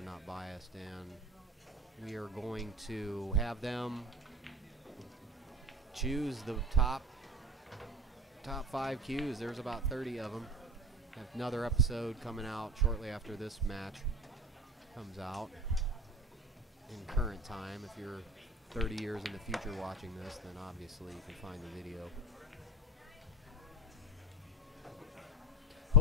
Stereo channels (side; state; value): both; normal; correlation 0.31